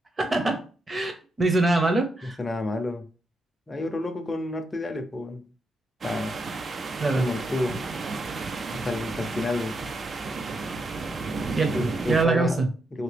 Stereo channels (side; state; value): both; normal; correlation 0.82